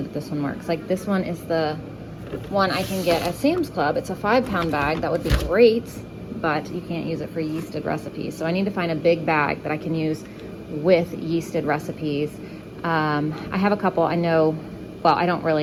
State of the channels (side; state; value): both; identical; correlation 1.00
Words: that this one works. Like this one is the one I can get at Sam's Club. It's a 5-pound bag. That would be great, but you can't use it for yeasted recipes. So I need to find a big bag that I can use with yeasted recipes. I have a couple I know, well, I don't